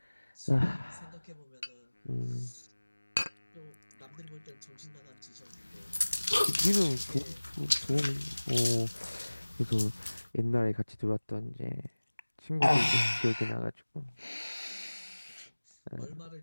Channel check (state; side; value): inverted; both; correlation -1.00